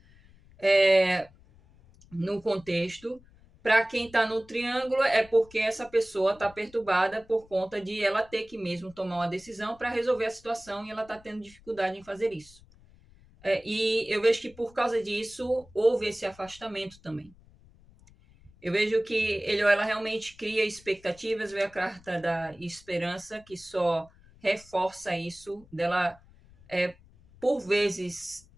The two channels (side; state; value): left; noise; rumble, 26 dB below the sound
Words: no contexto. Para quem está no triângulo, é porque essa pessoa está perturbada por conta de ela ter que mesmo tomar uma decisão para resolver a situação e ela está tendo dificuldade em fazer isso. E eu vejo que por causa disso houve esse afastamento também. Eu vejo que ele ou ela realmente cria expectativas, vê a carta da esperança, que só reforça isso, dela, por vezes,